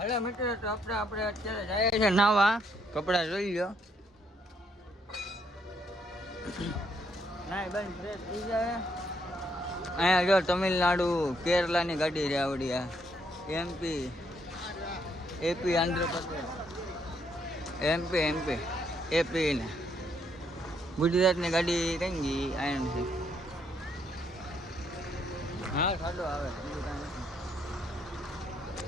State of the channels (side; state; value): both; normal; correlation 0.72